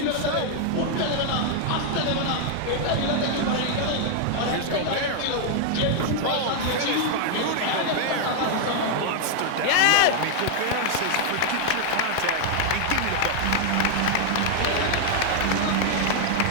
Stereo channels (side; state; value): both; different; correlation 0.00